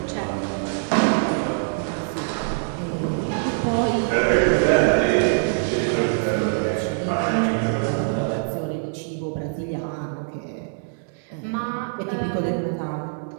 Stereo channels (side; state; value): left; silent; digital silence